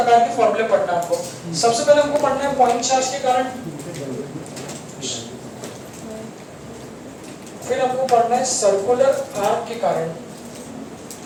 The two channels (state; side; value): identical; both; correlation 1.00